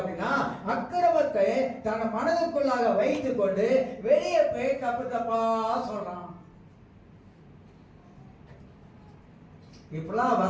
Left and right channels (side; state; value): both; identical; correlation 1.00